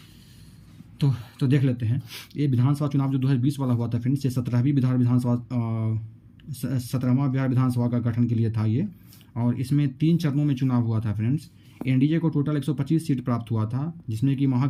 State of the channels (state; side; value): identical; both; correlation 1.00